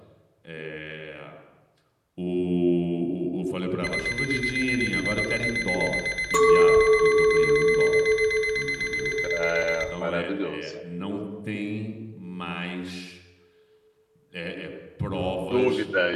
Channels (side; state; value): both; identical; correlation 1.00